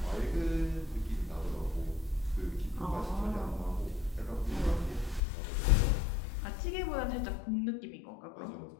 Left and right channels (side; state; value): right; drops out; at 5.2 s